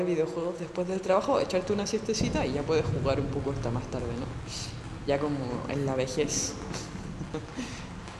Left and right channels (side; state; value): both; identical; correlation 1.00